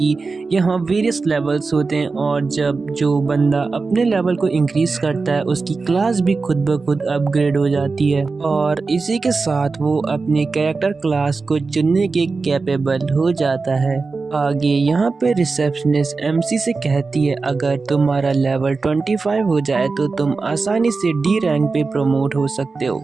यहाँ वेरियस लेवल्स होते हैं और जब जो बंदा अपने लेवल को इंक्रीज करता है उसकी क्लास भी खुद ब खुद अपग्रेड हो जाती है और इसी के साथ वो अपनी कैरेक्टर क्लास को चुनने के कैपेबल हो जाता है। आगे यहाँ पे रिसेप्शनिस्ट एमसी से कहती है अगर तुम्हारा लेवल 25 हो जाए तो तुम आसानी से डी रैंक पे प्रमोट हो सकते हो।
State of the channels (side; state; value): left; quieter; 4.2 dB